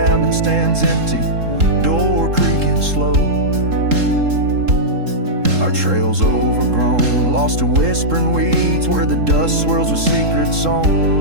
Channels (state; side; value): late; left; 3.7 ms